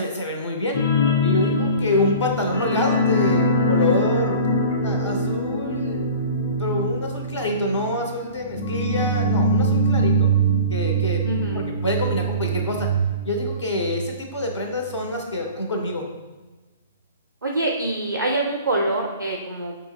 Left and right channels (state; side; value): inverted; both; correlation -0.40